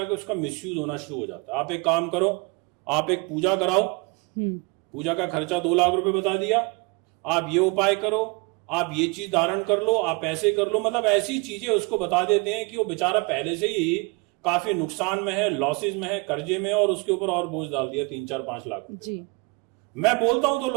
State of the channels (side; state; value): left; quieter; 28.6 dB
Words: उसका मिसयूज होना शुरू हो जाता है। आप एक काम करो, आप एक पूजा कराओ, पूजा का खर्चा 2 लाख रुपए बता दिया, आप ये उपाय करो, आप ये चीज धारण कर लो, आप ऐसे कर लो, मतलब ऐसी चीजें उसको बता देते हैं कि वो बेचारा पहले से ही काफी नुकसान में है, लॉसेज में है, कर्जे में है और उसके ऊपर और बोझ डाल दिया 3, 4, 5 लाख रुपए जी। मैं बोलता हूं तो